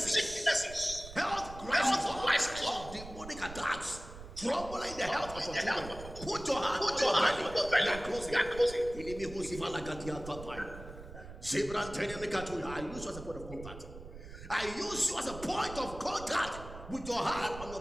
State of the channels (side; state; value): right; noise; rumble, 13 dB below the sound